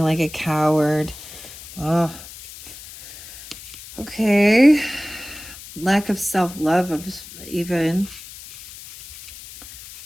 like a coward. Oh, okay. Lack of self-love, even.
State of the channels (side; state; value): left; noise; hiss, 16 dB below the sound